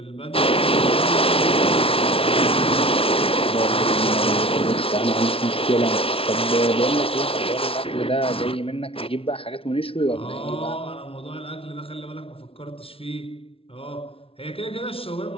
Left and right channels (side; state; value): right; late; 0.26 ms